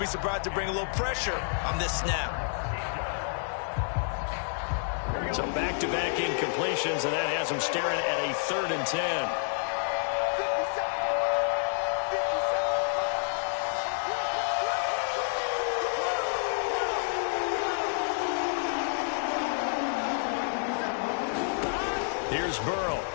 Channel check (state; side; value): silent; right; 58 dB below the other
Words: surprised to bring a little pressure on this snap. So back-to-back incompletions, and that has them staring at a 3rd and 10. Here's Burrow.